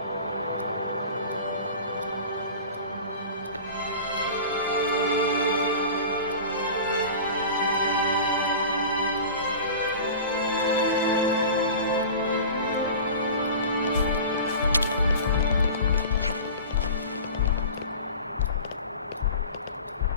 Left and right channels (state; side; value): inverted; both; correlation -0.36